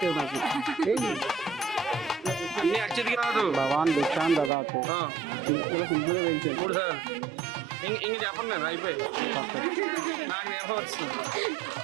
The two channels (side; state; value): left; drops out; at 4.5 s